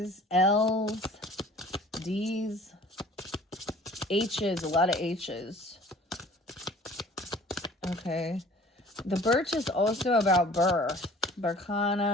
L's, D's, H's, a lot of H's. Okay. The birch is also about birth.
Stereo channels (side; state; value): both; normal; correlation 0.49